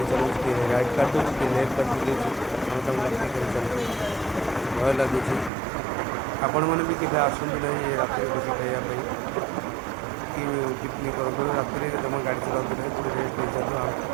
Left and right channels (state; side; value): drops out; left; at 5.5 s